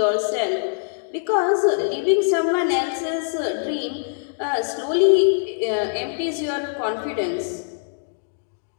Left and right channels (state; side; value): silent; right; digital silence